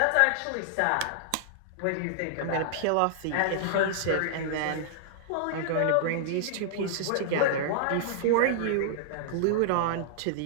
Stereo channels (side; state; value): both; different; correlation -0.01